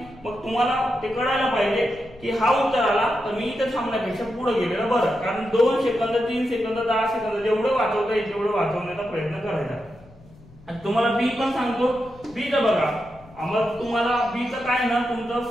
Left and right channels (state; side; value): noise; left; rumble, 24 dB below the sound